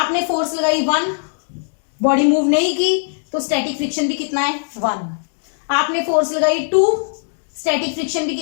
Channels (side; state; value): right; silent; digital silence